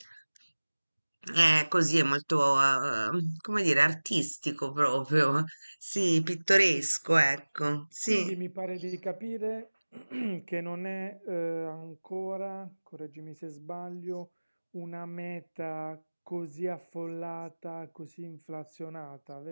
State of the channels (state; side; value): inverted; both; correlation -1.00